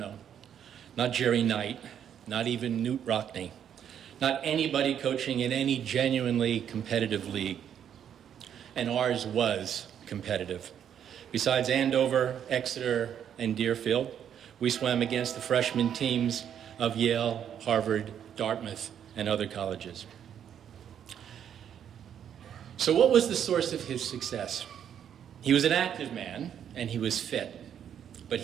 not Jerry Knight, not even Newt Rockney, not anybody coaching in any genuinely competitive league. And ours was competitive. Besides Andover, Exeter, and Deerfield. We swam against the freshman teams of Yale, Harvard, Dartmouth, and other colleges. So what was the source of his success? He was an active man, and he was fit, but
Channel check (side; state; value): left; quieter; 9.1 dB